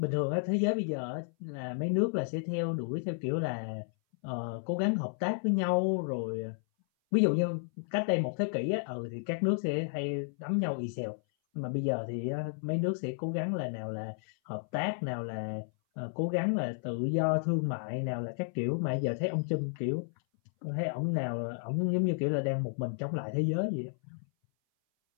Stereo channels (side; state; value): right; silent; 56 dB below the other